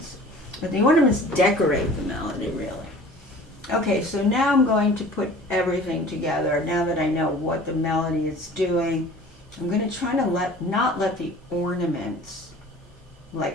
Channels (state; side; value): normal; both; correlation 0.45